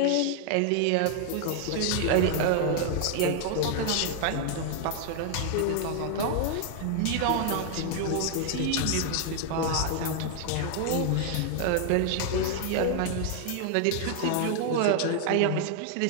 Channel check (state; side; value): different; both; correlation 0.00